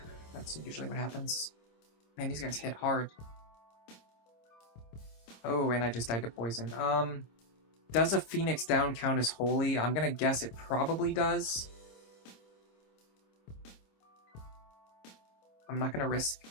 That's usually what happens. Man, these guys hit hard. Oh, and I just died to poison. Does a Phoenix down count as holy? I'm gonna guess it probably does. I'm not gonna risk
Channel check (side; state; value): right; late; 26 ms